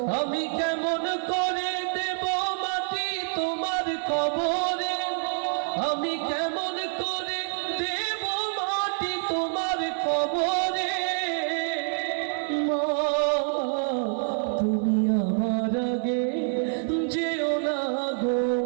আমি কেমন করে দেব মাটি তোমার কবরে, আমি কেমন করে দেব মাটি তোমার কবরে মা, তুমি আমার আগে যেও না গো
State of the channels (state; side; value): silent; left; 60 dB below the other